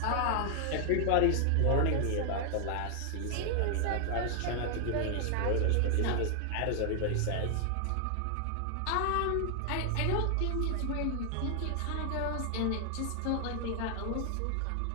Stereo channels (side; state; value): both; different; correlation 0.00